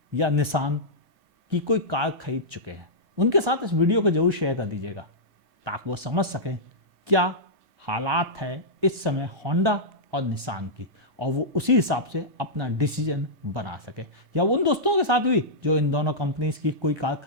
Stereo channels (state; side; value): late; left; 1.9 ms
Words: या निसान की कोई कार खरीद चुके हैं, उनके साथ इस वीडियो को जरूर शेयर कर दीजिएगा, ताकि वो समझ सकें क्या हालात है इस समय होंडा और निसान की, और वो उसी हिसाब से अपना डिसीजन बना सके। या उन दोस्तों के साथ भी जो इन दोनों कंपनीज की कोई कार